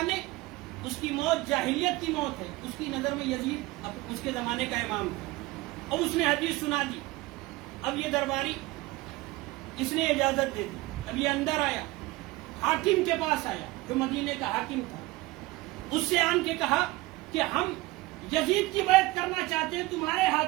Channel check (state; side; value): quieter; left; 20.0 dB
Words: اس کی موت جاہلیت کی موت ہے. اس کی نظر میں یزید اس کے زمانے کا امام تھا اور اس نے حدیث سنا دی. اب یہ درباری اس نے اجازت دے دی. اب یہ اندر آیا، حاکم کے پاس آیا جو مدینے کا حاکم تھا. اس سے آن کے کہا کہ ہم یزید کی بیعت کرنا چاہتے ہیں تمہارے